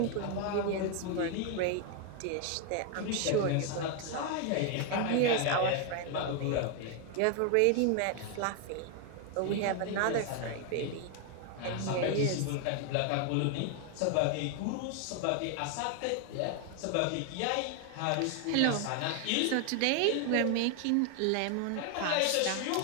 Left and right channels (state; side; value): different; both; correlation 0.01